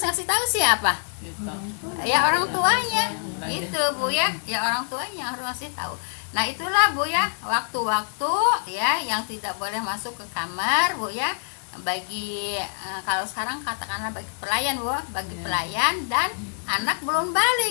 ngasih tahu siapa? Ya orang tuanya gitu Bu ya. Ya orang tuanya harus ngasih tahu. Nah itulah Bu ya, waktu-waktu ya yang tidak boleh masuk ke kamar Bu ya, bagi kalau sekarang katakanlah bagi pelayan Bu, bagi pelayan dan anak belum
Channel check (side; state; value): right; silent; digital silence